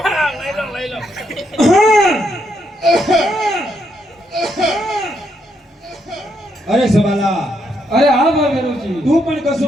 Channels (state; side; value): normal; both; correlation 0.77